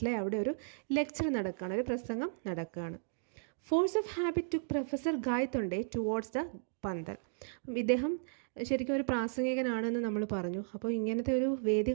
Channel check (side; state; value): left; silent; digital silence